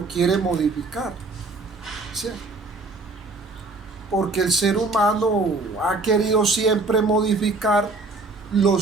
quiere modificar. ¿Sí? Porque el ser humano ha querido siempre modificar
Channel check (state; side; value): quieter; left; 3.4 dB